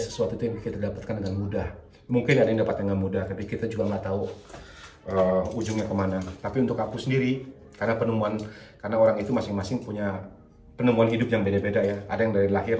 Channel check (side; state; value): both; identical; correlation 1.00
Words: tuh yang kita dapatkan dengan mudah. Mungkin ada yang dapat dengan mudah, tapi kita juga nggak tahu ujungnya kemana. Tapi untuk aku sendiri, karena orang itu masing-masing punya penemuan hidup yang beda-beda ya. Ada yang dari lahir